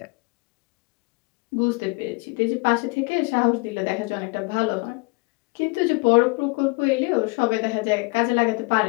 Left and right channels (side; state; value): right; quieter; 29.3 dB